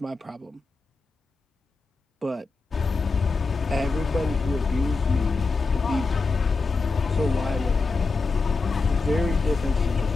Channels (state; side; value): quieter; right; 4.0 dB